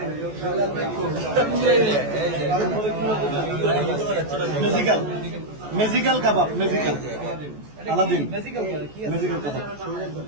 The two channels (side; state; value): left; late; 14 ms